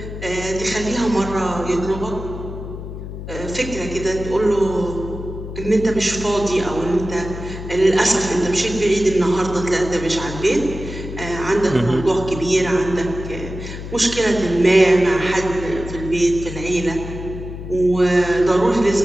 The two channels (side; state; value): left; noise; hum, 9 dB below the sound